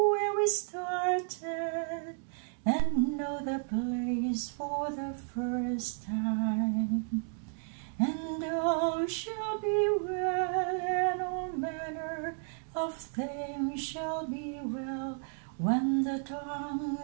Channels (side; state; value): left; silent; 56 dB below the other